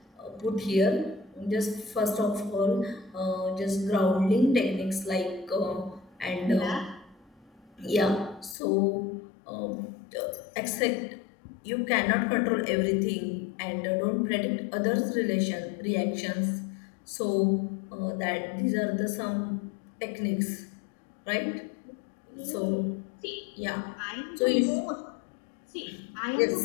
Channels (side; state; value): right; drops out; at 8.6 s